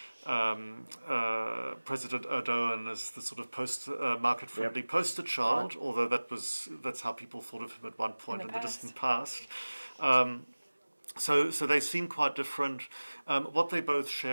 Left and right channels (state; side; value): inverted; both; correlation -1.00